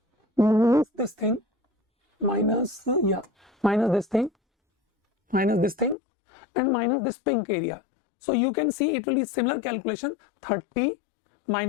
minus this thing, minus this thing, minus this thing, and minus this pink area. So you can see it will be similar calculation, 30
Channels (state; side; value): drops out; right; at 6.0 s